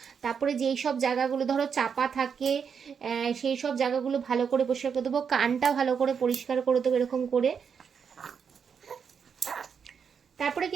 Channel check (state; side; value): quieter; left; 6.7 dB